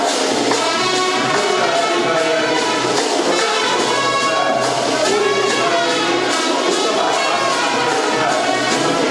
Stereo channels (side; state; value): both; identical; correlation 1.00